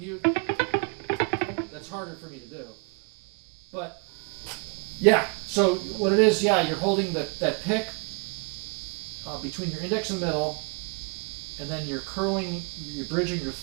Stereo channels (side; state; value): left; quieter; 34.3 dB